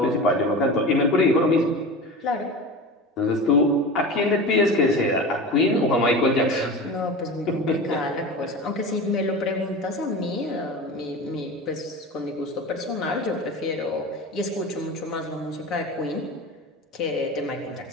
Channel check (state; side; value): normal; both; correlation 0.31